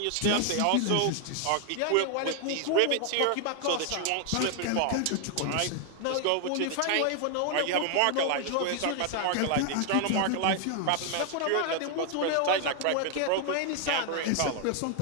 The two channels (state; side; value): different; both; correlation 0.00